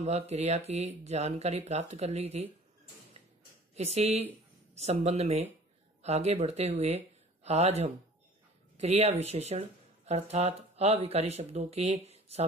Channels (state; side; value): normal; both; correlation 0.47